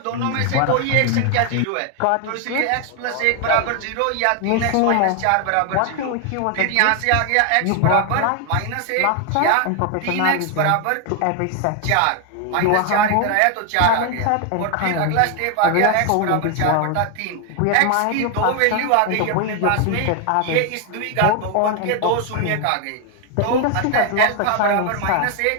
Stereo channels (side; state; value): both; different; correlation 0.01